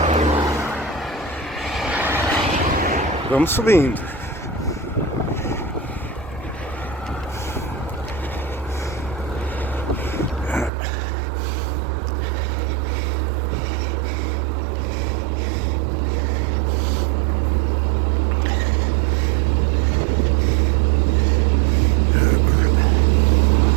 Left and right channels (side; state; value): left; drops out; at 10.7 s